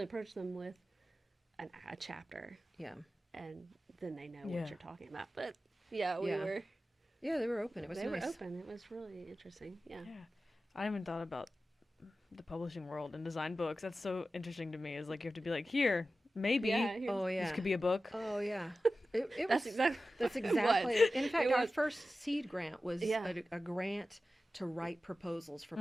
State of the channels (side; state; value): both; normal; correlation 0.94